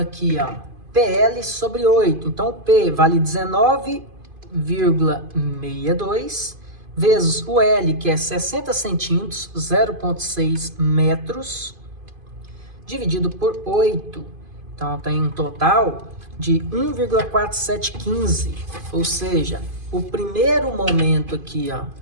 ó, PL sobre 8. Então o P vale 19,62 vezes o L, que é 60 centímetros, 0,6 metros, dividido por 8. Então tem um total de 1,4715, ou seja, o primeiro momento aqui, ó,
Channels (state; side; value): late; left; 2.5 ms